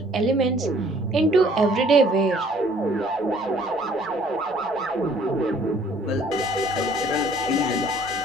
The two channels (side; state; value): both; normal; correlation 0.58